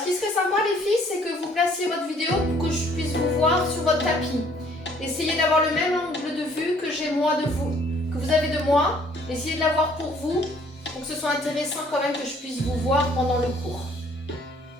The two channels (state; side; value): normal; both; correlation 0.60